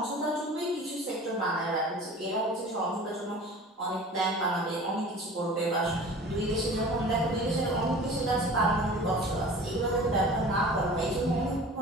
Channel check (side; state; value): both; normal; correlation 0.41